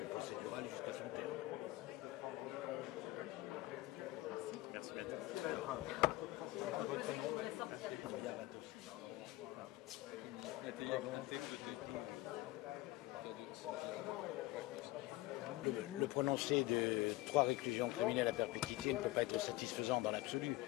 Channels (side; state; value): right; quieter; 18.3 dB